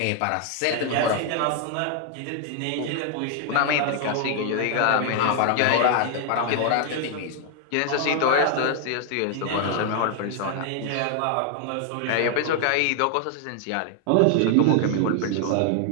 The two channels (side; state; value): both; different; correlation 0.00